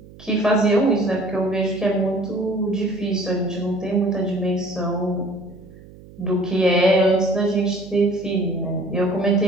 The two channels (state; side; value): noise; right; hum, 21 dB below the sound